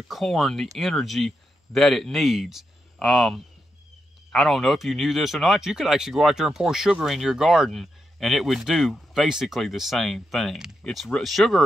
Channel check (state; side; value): normal; both; correlation 0.84